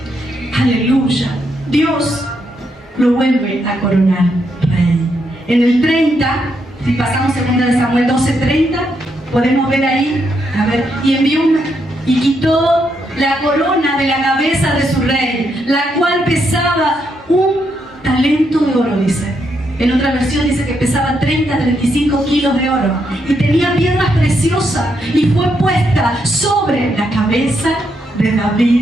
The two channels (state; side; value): normal; both; correlation 0.79